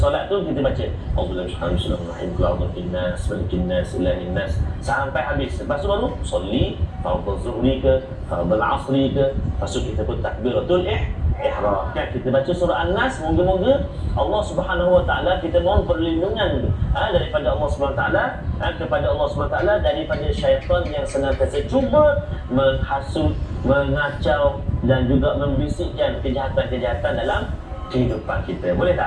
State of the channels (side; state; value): both; identical; correlation 1.00